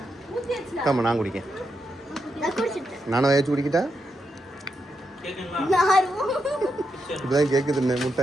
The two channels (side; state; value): both; normal; correlation 0.84